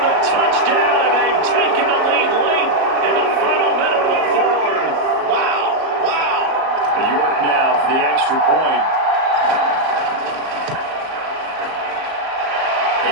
touchdown, and they've taken the lead late in the final minute of the fourth. Wow, wow. York now for the extra point.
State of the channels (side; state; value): left; late; 38 ms